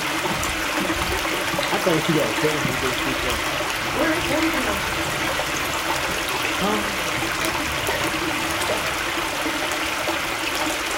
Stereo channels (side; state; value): both; identical; correlation 1.00